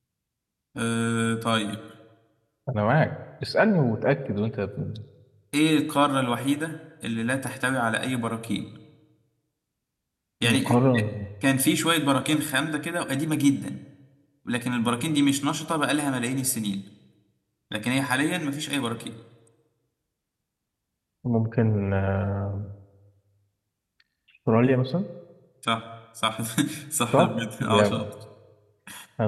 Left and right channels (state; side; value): identical; both; correlation 1.00